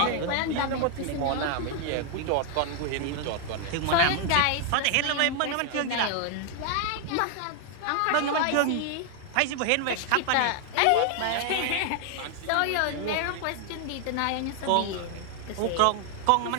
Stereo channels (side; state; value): both; different; correlation 0.00